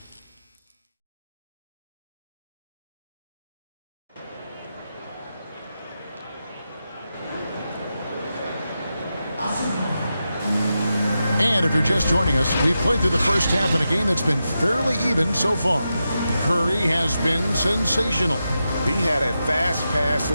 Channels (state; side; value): inverted; both; correlation -0.89